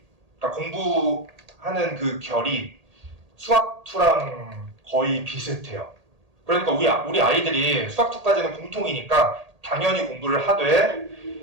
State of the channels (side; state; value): left; late; 1.8 ms